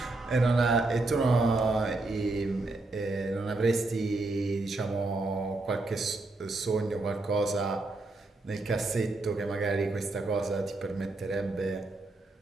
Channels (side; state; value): left; quieter; 3.1 dB